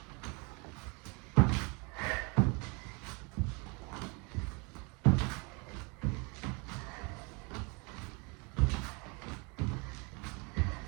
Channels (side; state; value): left; quieter; 30.4 dB